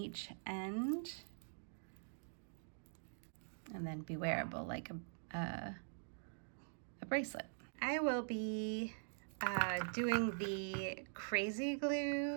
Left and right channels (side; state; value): left; silent; digital silence